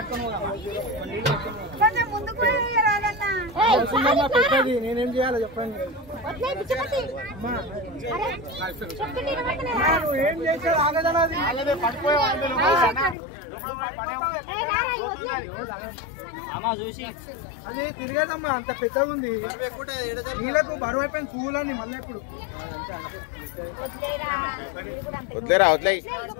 కొంచెం ముందు కూడా నేనేం చేయాలో చెప్పండి. ఏం చేశారు? అది తిరిగేదమ్మా, అంత పెద్దగా ఉంది. నీళ్ళకు బరువు అయిపోయింది కూలని మళ్ళీ ఇప్పుడు వదిలేరా వదిలే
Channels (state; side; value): drops out; right; at 13.2 s